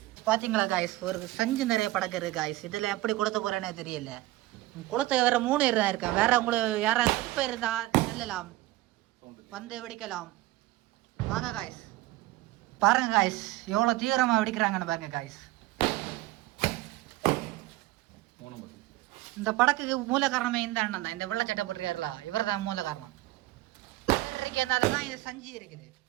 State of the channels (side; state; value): left; quieter; 17.5 dB